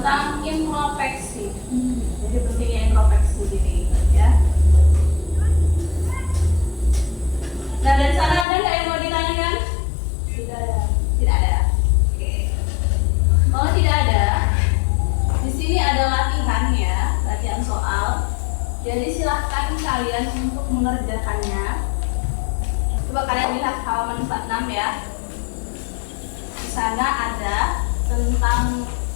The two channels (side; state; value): right; drops out; at 8.5 s